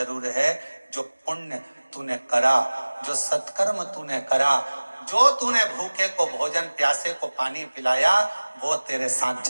है, जो पुण्य तूने करा, जो सत्कर्म तूने करा, जो तूने भूखे को भोजन, प्यासे को पानी पिलाया, वो तेरे साथ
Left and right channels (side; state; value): both; inverted; correlation -1.00